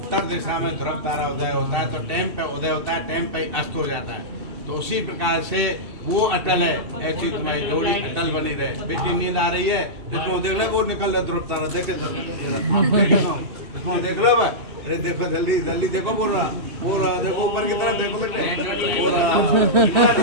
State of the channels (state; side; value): late; left; 2.7 ms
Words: दिशा में ध्रुव तारा उदय होता है तो टाइम पे उदय होता है टाइम पे अस्त हो जाता है तो उसी प्रकार से वो अटल है ऐसी तुम्हारी जोड़ी अटल बनी रहे बेटी नींद आ रही है इसको देख लो वो निकल रहा ध्रुव तारा देखे इसको देख लो अरे देखो जल्दी जल्दी देखो बोल रहा देखो ऊपर की तरफ देखो बेटे बोल रहा